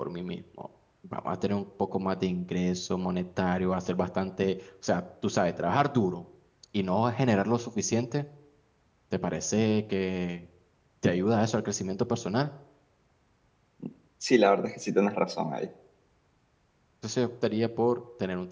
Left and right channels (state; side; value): identical; both; correlation 1.00